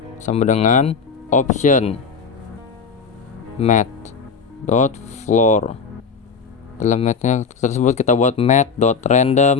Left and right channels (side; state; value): right; quieter; 5.5 dB